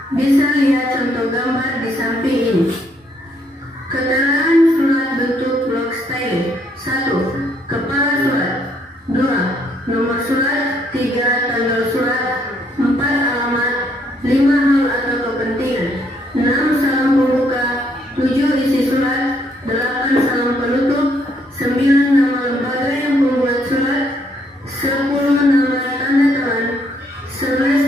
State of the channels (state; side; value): normal; both; correlation 0.70